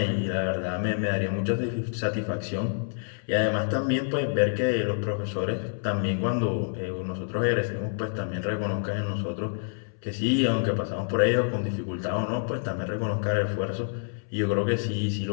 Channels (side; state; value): right; silent; 60 dB below the other